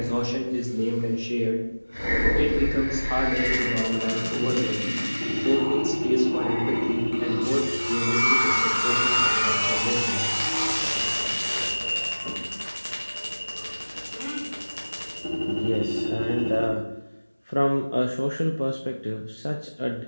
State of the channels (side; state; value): both; inverted; correlation -1.00